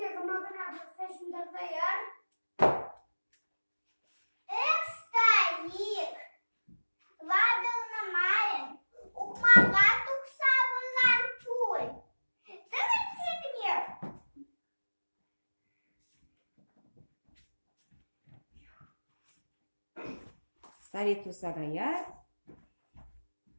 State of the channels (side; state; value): both; inverted; correlation -1.00